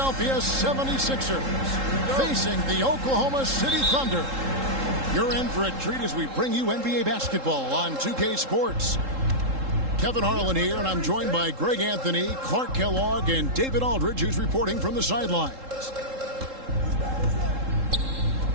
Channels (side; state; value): left; late; 3.7 ms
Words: 76ers facing the Oklahoma City Thunder. You're in for a treat as we bring you NBA basketball on 2K Sports. Kevin Harlan here, and I'm joined by Greg Anthony, Clark Kellogg, and David Aldridge, who's reporting from the sidelines.